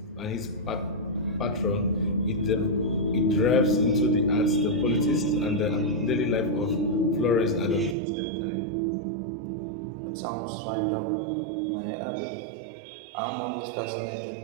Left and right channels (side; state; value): left; drops out; at 8.0 s